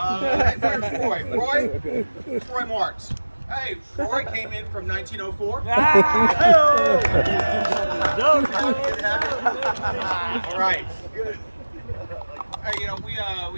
Where's Roy? Roy Marks. Hey, Roy came in from 1904. All right. Hey, we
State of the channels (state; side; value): inverted; both; correlation -1.00